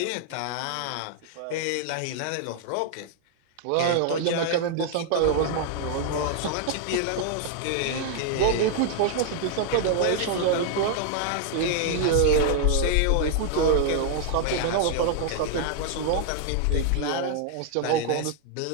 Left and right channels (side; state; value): both; different; correlation 0.00